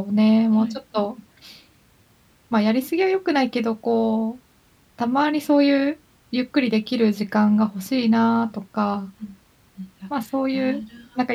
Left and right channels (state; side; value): identical; both; correlation 1.00